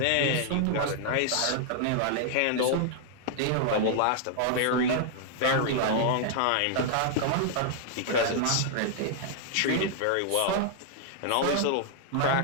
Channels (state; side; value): different; both; correlation 0.00